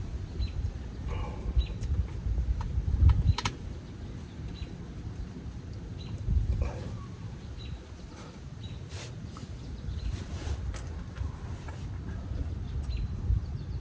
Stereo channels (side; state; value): both; identical; correlation 1.00